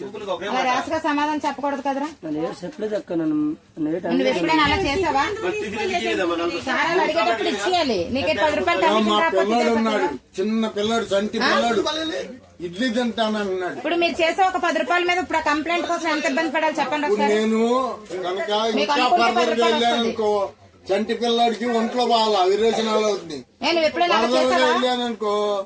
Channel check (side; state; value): both; identical; correlation 1.00